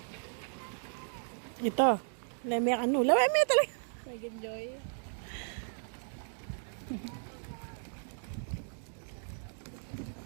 Ito. Leme ano. Leme talaga. Nag-enjoy.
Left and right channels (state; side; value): silent; left; digital silence